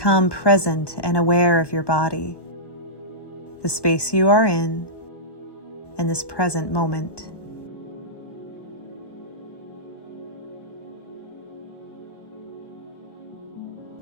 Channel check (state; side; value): late; right; 1.1 ms